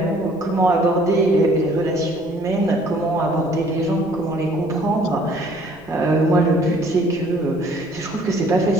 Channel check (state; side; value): noise; left; rumble, 26 dB below the sound